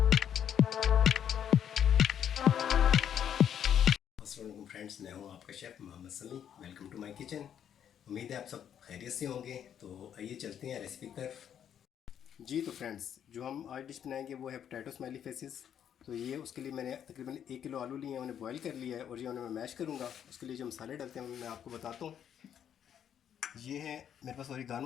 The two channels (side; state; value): right; quieter; 9.2 dB